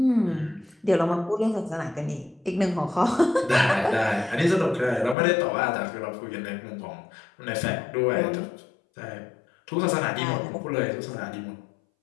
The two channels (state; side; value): drops out; right; at 5.2 s